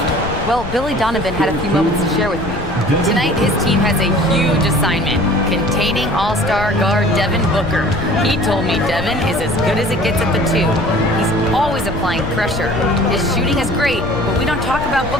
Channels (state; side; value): noise; left; rumble, 9 dB below the sound